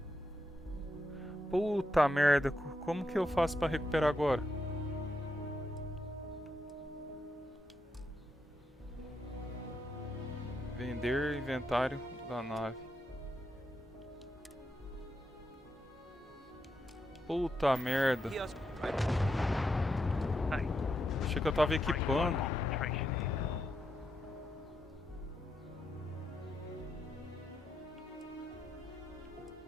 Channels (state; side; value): normal; both; correlation 0.83